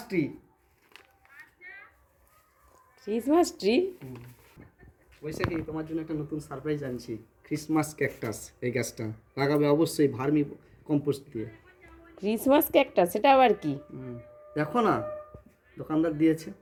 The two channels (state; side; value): identical; both; correlation 1.00